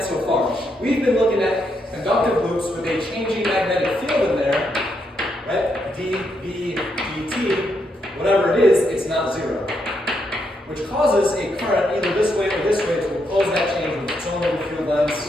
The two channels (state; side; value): normal; both; correlation 0.79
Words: so far? We've been looking at conductive loops with a changing magnetic field in there, right? D, B, dt, whatever it is, it's not zero. Which causes a current either this way or this way to oppose that change with its own little field lines,